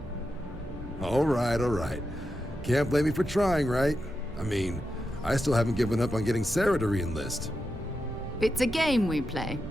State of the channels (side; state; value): both; normal; correlation 0.88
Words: All right. Can't blame me for trying, right? I mean, I still haven't given up on getting Sarah to re-enlist. It's a game we play.